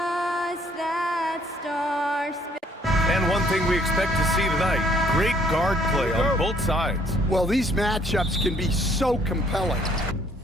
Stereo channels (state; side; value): normal; both; correlation 0.63